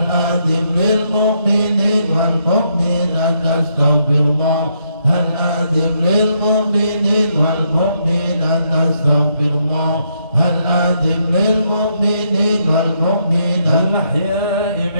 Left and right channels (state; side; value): inverted; both; correlation -0.75